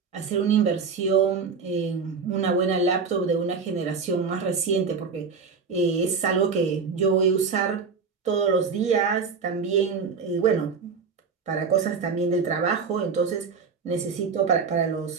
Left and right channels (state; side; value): quieter; left; 5.4 dB